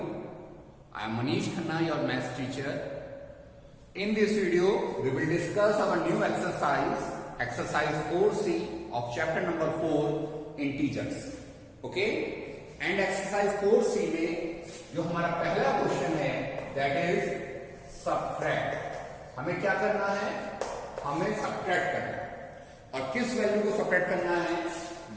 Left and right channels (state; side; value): identical; both; correlation 1.00